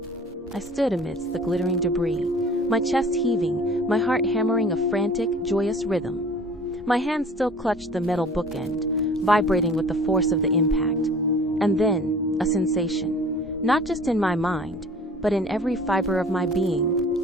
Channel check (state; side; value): normal; both; correlation 0.47